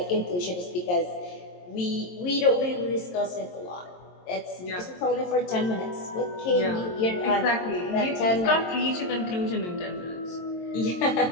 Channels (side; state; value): right; late; 22 ms